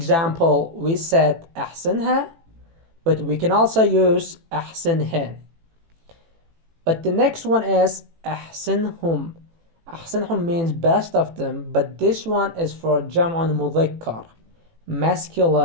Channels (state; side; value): late; left; 18 ms